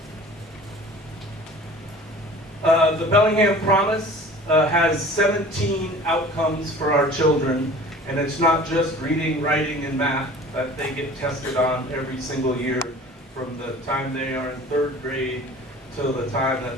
The Bellingham Promise has 17 outcomes for our children, and it's not just reading, writing, and math that they get tested on every single year from the time they are in 3rd grade till the time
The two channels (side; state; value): both; normal; correlation 0.44